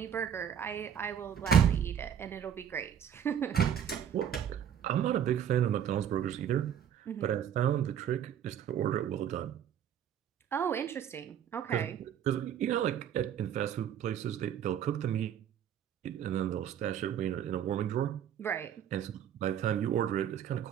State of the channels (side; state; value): left; quieter; 9.3 dB